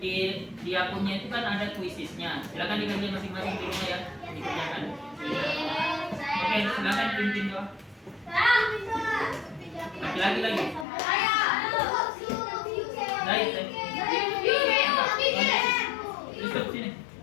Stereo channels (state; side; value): drops out; right; at 10.9 s